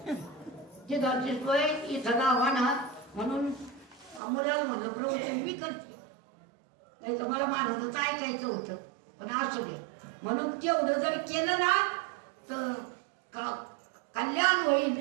ती घरची सोय इथं राव्हाना. म्हणून मुलाला म्हणलं प्रवचन मी करते. नाही तर मला महाराजाचं ऐकायचं होतं पण असू दे. म्हणून तेवढं जर केलं ना तर कल्याण होईल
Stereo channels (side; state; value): left; drops out; at 4.2 s